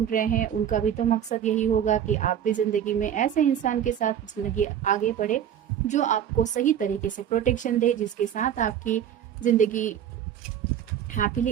रहे हैं, उनका भी तो मकसद यही होगा कि आप भी जिंदगी में ऐसे इंसान के साथ जिंदगी आगे बढ़े जो आपको सही तरीके से प्रोटेक्शन दे, जिसके साथ आपकी जिंदगी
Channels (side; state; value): left; quieter; 9.6 dB